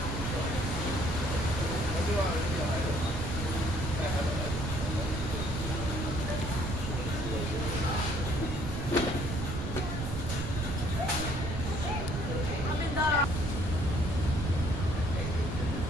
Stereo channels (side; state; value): right; noise; rumble, 3 dB below the sound